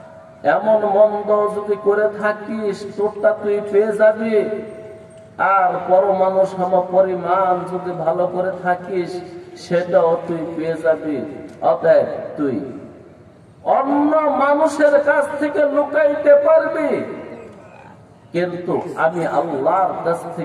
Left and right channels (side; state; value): both; identical; correlation 1.00